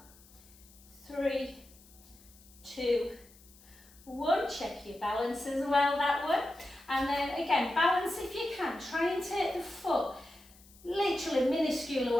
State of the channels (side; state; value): left; noise; hiss, 25 dB below the sound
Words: 3, 2, 1. Check your balance as well, that one. And then again, balance if you can. Try and take the foot literally minuscule